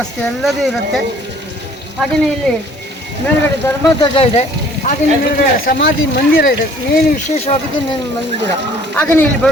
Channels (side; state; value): both; normal; correlation 0.55